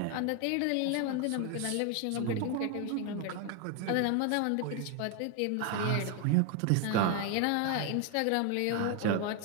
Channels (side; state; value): both; different; correlation 0.01